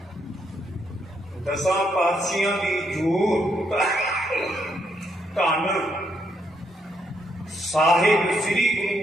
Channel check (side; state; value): both; normal; correlation 0.76